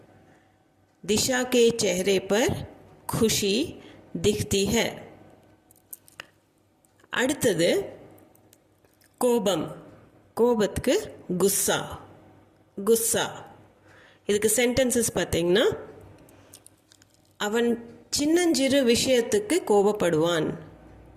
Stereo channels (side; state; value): both; identical; correlation 1.00